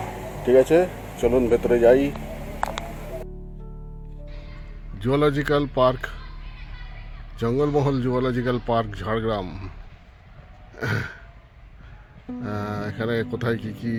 ঠিক আছে, চলুন ভেতরে যাই। Zoological park, Jangalmahal zoological park Jhargram. এখানে কোথায় কি কি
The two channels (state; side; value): identical; both; correlation 1.00